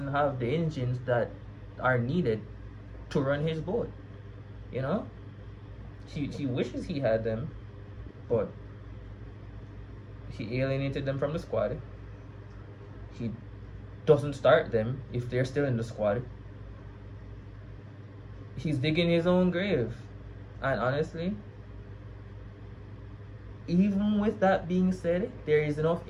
have the engines that are needed to run his boat. He wishes he had them, but he alienated them from the squad. he doesn't start them if they're still in the squad, he's digging his own grave. And honestly, even with that being said, there is enough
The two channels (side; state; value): both; identical; correlation 1.00